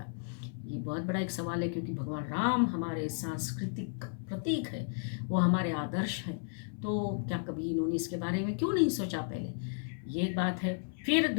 ये बहुत बड़ा एक सवाल है, क्योंकि भगवान राम हमारे सांस्कृतिक प्रतीक है, वो हमारे आदर्श हैं। तो क्या कभी इन्होंने इसके बारे में क्यों नहीं सोचा पहले? ये एक बात है। फिर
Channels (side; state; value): right; silent; 55 dB below the other